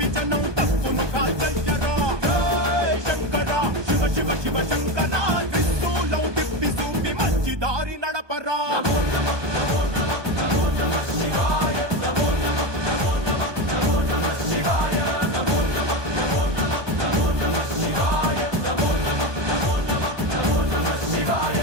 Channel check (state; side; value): late; left; 1.2 ms